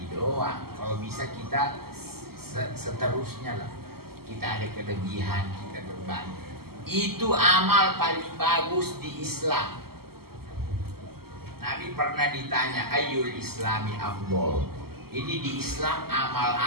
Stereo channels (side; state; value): left; late; 0.95 ms